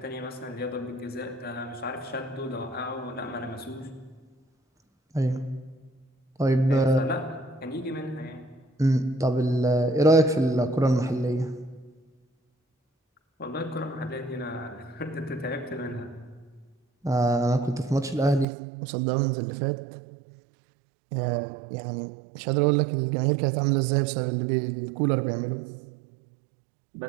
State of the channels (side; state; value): left; drops out; at 18.4 s